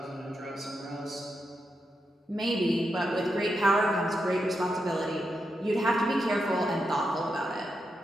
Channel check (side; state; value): both; normal; correlation 0.85